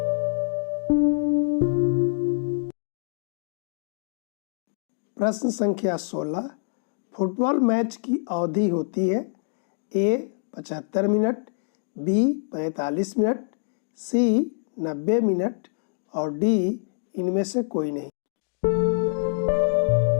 प्रश्न संख्या 16, फुटबॉल मैच की अवधि होती है। ए, 75 मिनट, बी, 45 मिनट, सी, 90 मिनट और डी, इनमें से कोई नहीं।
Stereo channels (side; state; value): right; silent; digital silence